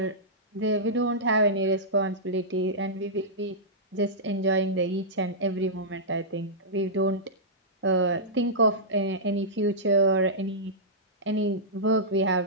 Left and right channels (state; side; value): normal; both; correlation -0.14